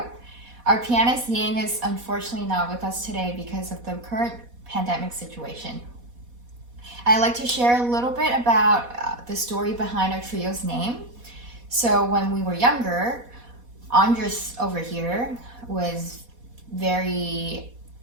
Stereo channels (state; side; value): late; left; 4.1 ms